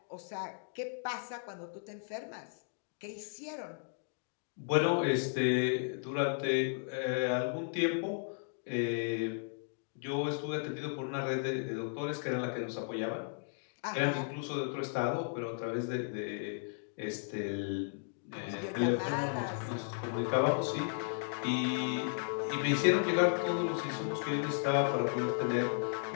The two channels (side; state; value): right; silent; digital silence